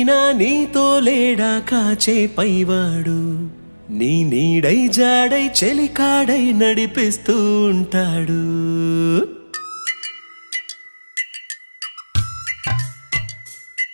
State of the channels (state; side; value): inverted; both; correlation -1.00